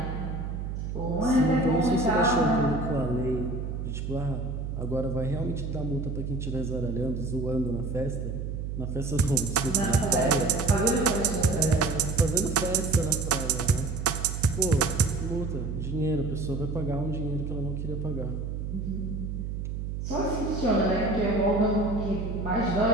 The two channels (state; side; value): noise; right; hum, 4 dB below the sound